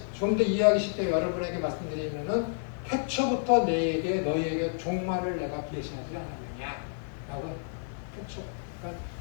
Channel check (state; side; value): silent; right; 58 dB below the other